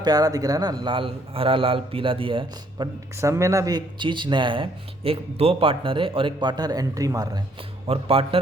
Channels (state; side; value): normal; both; correlation 0.66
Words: दिख रहा है ना, लाल हरा लाल पीला दिया है। बट सम में ना भी एक चीज़ नया है। एक दो पार्टनर है और एक पार्टनर एंट्री मार रहा है, और